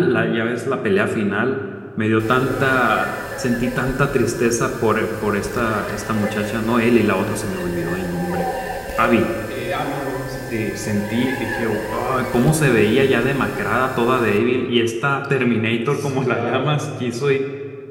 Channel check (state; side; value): identical; both; correlation 1.00